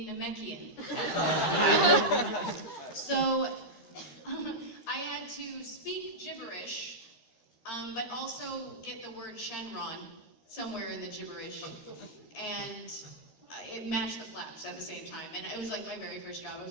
Namekian. So I had to speak gibberish, but also get the word Shenron somewhere in the gibberish. And it matched the flaps at the same time. And it was like my very first job. I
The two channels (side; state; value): right; late; 13 ms